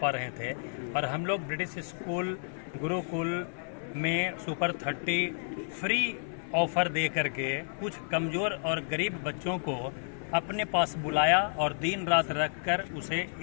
रहे थे और हम लोग ब्रिटिश स्कूल गुरुकुल में सुपर 30 फ्री ऑफर दे करके कुछ कमज़ोर और गरीब बच्चों को अपने पास बुलाया और दिन रात रखकर उसे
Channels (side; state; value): right; silent; 56 dB below the other